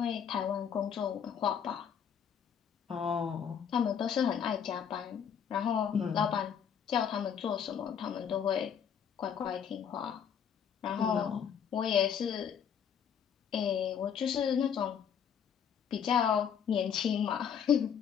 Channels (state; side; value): quieter; right; 8.0 dB